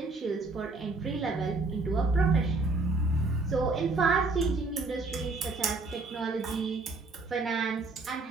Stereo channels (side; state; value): left; quieter; 3.4 dB